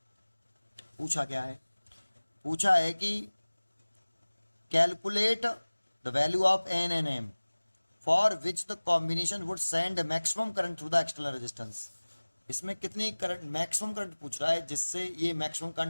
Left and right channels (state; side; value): inverted; both; correlation -1.00